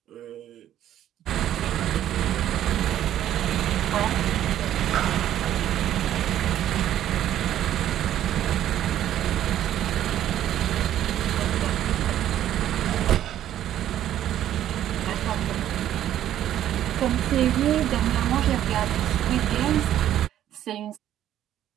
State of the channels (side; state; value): left; quieter; 11.7 dB